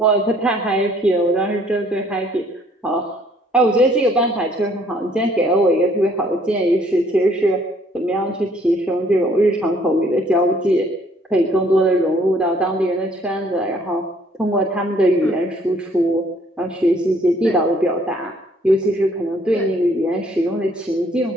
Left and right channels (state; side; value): normal; both; correlation 0.62